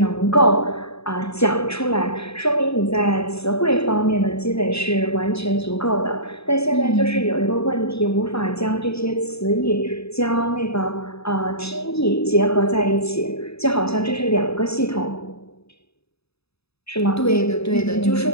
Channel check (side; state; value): right; late; 0.78 ms